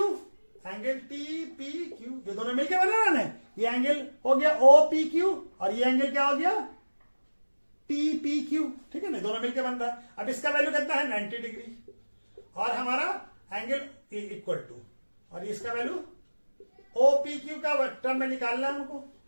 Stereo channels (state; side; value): inverted; both; correlation -1.00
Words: angle TPQ, ये दोनों मिलकर बना रहा है, ये एंगल हो गया OPQ और ये एंगल क्या हो गया TPQ, ठीक है ना, दोनों मिलकर बन रहा है। अब इसका वैल्यू कितना है, 90 डिग्री, और हमारा एंगल इक्वल टू, और इसका वैल्यू OPQ का टर्म में निकालना है हमको,